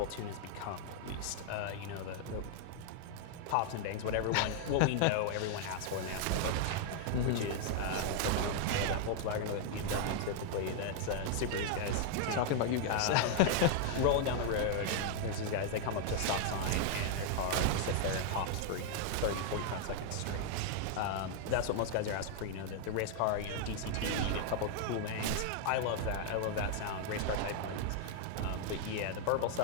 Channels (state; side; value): different; both; correlation 0.00